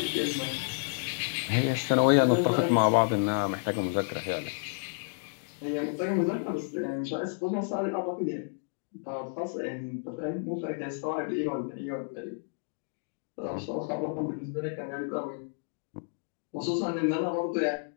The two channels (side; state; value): right; silent; digital silence